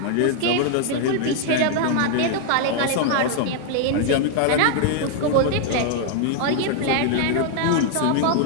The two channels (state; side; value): different; both; correlation 0.00